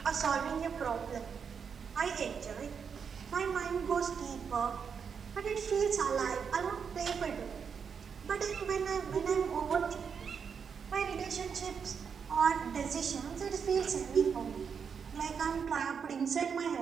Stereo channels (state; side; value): quieter; left; 6.5 dB